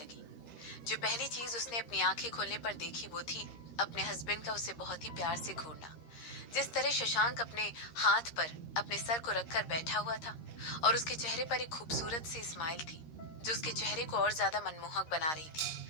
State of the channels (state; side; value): late; right; 13 ms